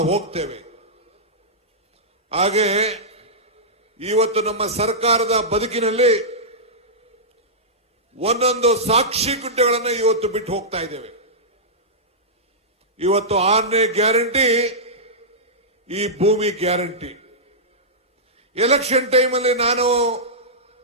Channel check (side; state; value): both; normal; correlation -0.13